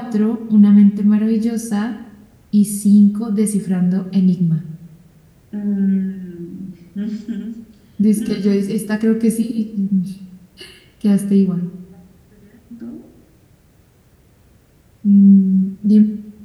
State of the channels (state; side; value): identical; both; correlation 1.00